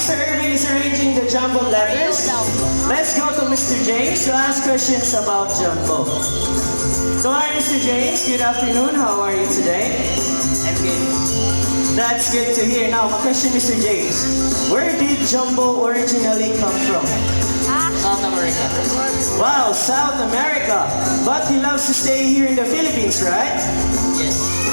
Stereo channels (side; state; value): both; inverted; correlation -1.00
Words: Irvin is arranging the Jumbo letters, let's go to Mr. James to ask questions about Jumbo. So hi Mr. James, good afternoon. How are you today? I'm good. That's good to hear. Now, my question Mr. James, where did Jumbo originally come from? South America. Wow, South America. But he loves to stay here in the Philippines, right? Yes.